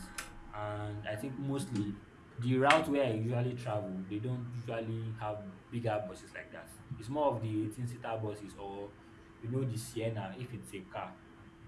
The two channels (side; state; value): both; identical; correlation 1.00